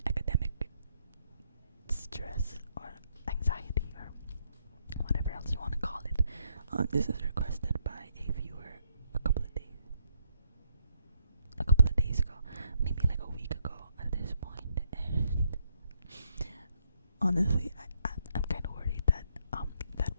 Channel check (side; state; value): both; inverted; correlation -0.74